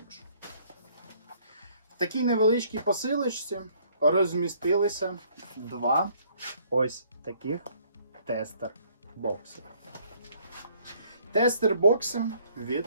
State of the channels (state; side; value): inverted; both; correlation -0.62